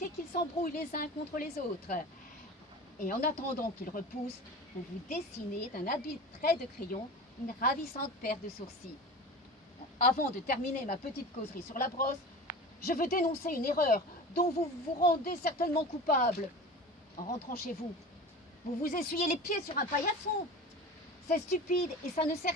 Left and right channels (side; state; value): both; normal; correlation 0.34